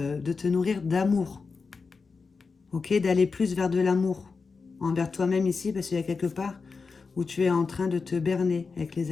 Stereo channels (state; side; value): quieter; right; 4.7 dB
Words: te nourrir d'amour. Ok? D'aller plus vers de l'amour. Envers toi-même ici, parce qu'il y a quelque part où tu es en train de te berner avec